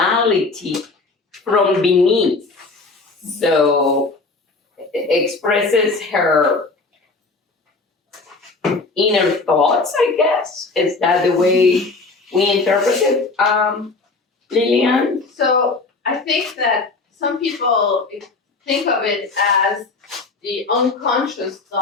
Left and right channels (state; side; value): quieter; right; 3.7 dB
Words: from beneath. So expresses her inner thoughts, I guess. Is that the way we interpret it, Lillian? So I think that some people think of it as the unconscious